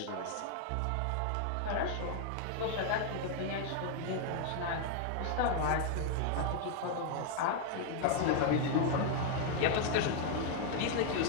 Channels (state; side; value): different; both; correlation 0.00